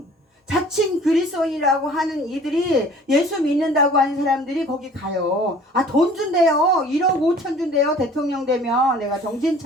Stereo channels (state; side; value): normal; both; correlation 0.49